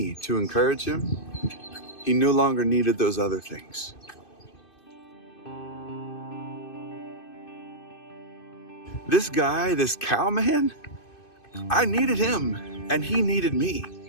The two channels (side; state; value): right; late; 2.6 ms